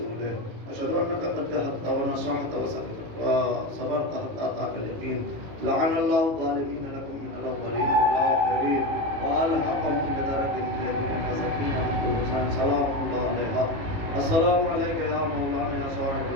أشهد أنك قد جهدت ونصحت وصبرت حتى أتاك اليقين. لعن الله الظالمين لكم من الأولين والآخرين وألحقهم بدرجة الجليل وسكينة من كل حسين سلام الله عليها. السلام عليك يا مولانا يا صاحب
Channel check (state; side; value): late; left; 18 ms